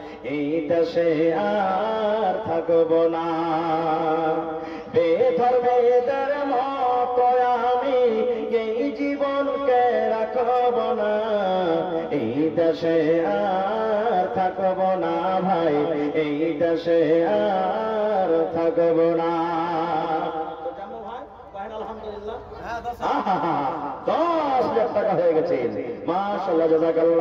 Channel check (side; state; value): both; identical; correlation 1.00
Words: এই দেশে আর থাকব না। বেধর্মেদের মতো আমি এই জীবনকে রাখব না। এই দেশে আর থাকব না ভাই, এই দেশে আর থাকব না। আলহামদুলিল্লাহ 10,000 টাকা হয়ে গেছে। মাশাআল্লাহ